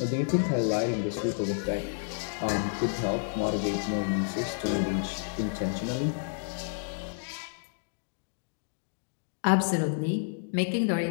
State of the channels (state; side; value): silent; right; digital silence